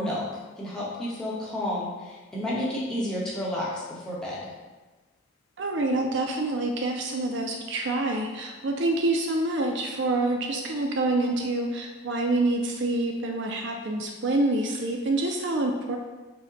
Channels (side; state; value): both; normal; correlation 0.40